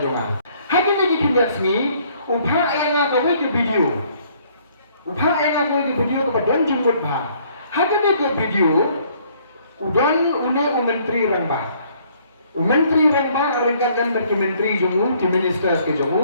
Haji lagi kinyak sini, upah yang aku ke video, upah yang aku ke video kepada don jemput bah. Haji lagi ke video, udan une menteri rambah. Menteri rambah ringkatkan bagi menteri jomu, di minister ke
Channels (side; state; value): both; inverted; correlation -0.62